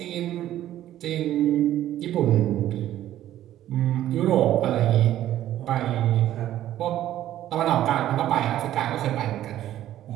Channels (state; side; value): quieter; left; 12.8 dB